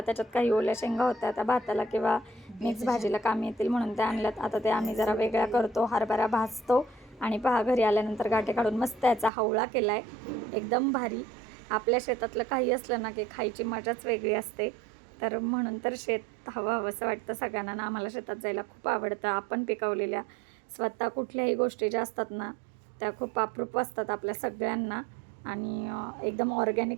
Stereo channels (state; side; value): drops out; left; at 9.3 s